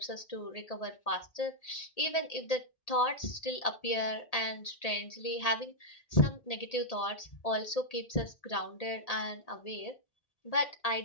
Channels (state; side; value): late; right; 1.8 ms